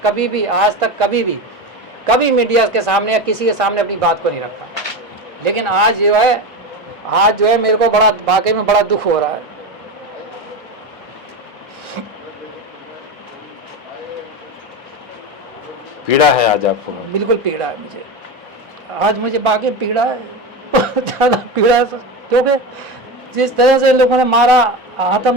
कभी मीडिया के सामने या किसी के सामने अपनी बात को नहीं रखा। लेकिन आज जो है मेरे को बड़ा वाकई में बड़ा दुख हो रहा है। पीड़ा है आज आपको? बिल्कुल पीड़ा है मुझे, आज मुझे वाकई पीड़ा है, बहुत ज़्यादा पीड़ा है। क्योंकि जिस तरह से इन लोगों ने मारा,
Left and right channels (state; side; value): normal; both; correlation 0.21